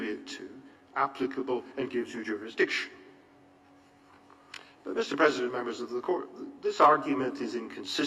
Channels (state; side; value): identical; both; correlation 1.00